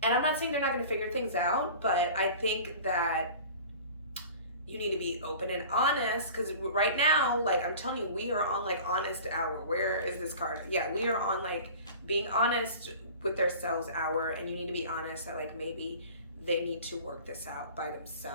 And I'm not saying they're not gonna figure things out, but I think that you need to be open and honest, because right now, like, I'm telling you, we are on, like, honest hour. Where is this card? Yeah, we are on, like, being honest with themselves hour, and you need to be honest that, like, maybe they need to work this out by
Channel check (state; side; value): inverted; both; correlation -0.41